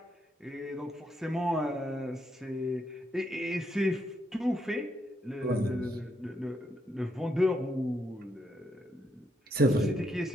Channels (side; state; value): both; normal; correlation 0.78